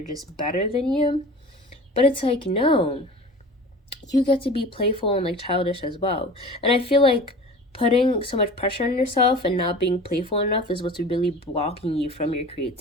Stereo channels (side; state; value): both; normal; correlation 0.39